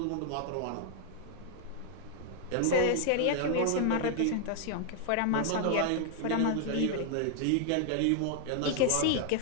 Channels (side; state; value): both; different; correlation 0.00